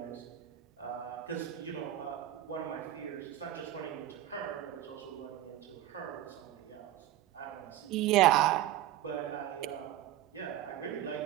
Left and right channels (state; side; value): quieter; left; 13.1 dB